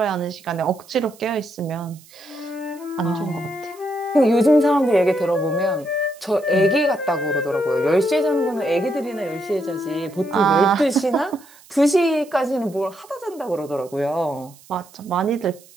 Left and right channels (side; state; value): right; noise; hiss, 25 dB below the sound